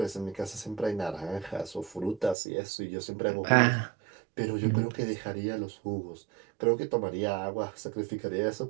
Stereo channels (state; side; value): drops out; left; at 2.4 s